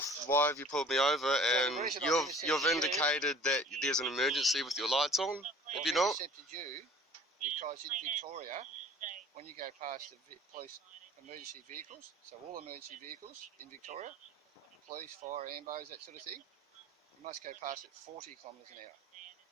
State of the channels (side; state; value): both; normal; correlation 0.48